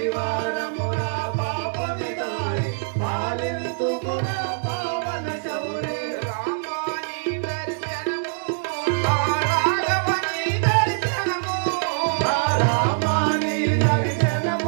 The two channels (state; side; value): silent; left; 63 dB below the other